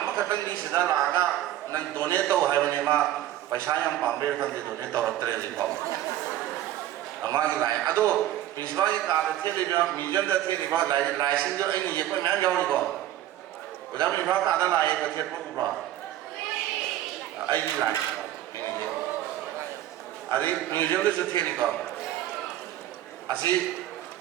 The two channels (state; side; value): quieter; left; 13.0 dB